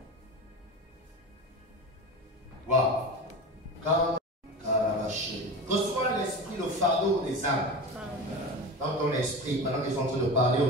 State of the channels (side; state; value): both; normal; correlation 0.28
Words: Waouh. Reçois l'esprit, le fardeau des âmes dans ton esprit pendant qu'ils sont en train de parler au